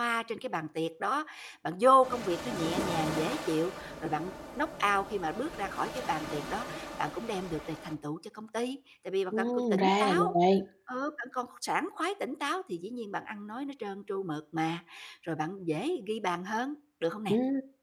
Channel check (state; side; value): identical; both; correlation 1.00